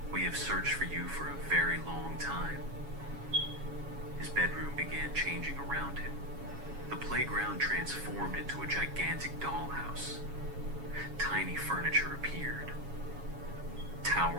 We have searched for you for a very long time. His bedroom began changing around him. The playground transformed into a gigantic dollhouse. Tiny furniture appeared.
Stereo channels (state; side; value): late; left; 7.2 ms